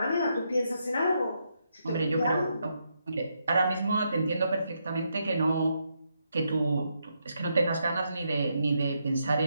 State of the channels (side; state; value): both; inverted; correlation -0.80